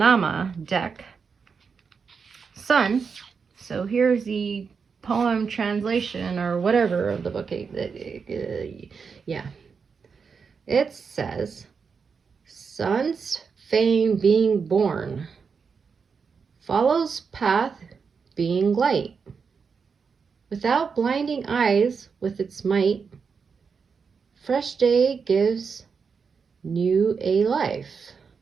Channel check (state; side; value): quieter; left; 5.7 dB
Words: deck. Sun. So here's the poem translation or whatever of the book. Yeah. It says, Sun's fame being born, follows path being light. Without blinding eyes with its might, fresh day gives new a life.